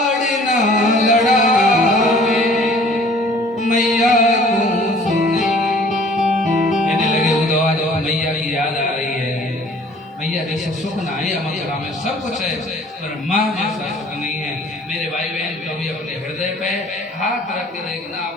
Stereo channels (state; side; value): normal; both; correlation 0.52